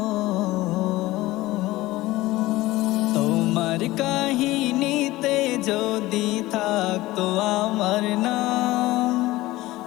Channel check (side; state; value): right; quieter; 18.2 dB